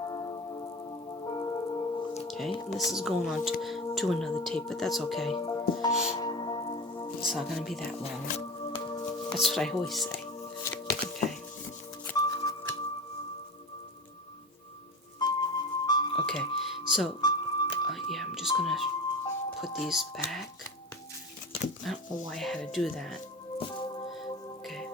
Okay, and this is going on to another tape, but that's okay. It's not going to be that long. That's what I always say. Okay. Okay, so, yeah, I'm just going to put these back. I don't know why I had to do that. Okay,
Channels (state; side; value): normal; both; correlation 0.30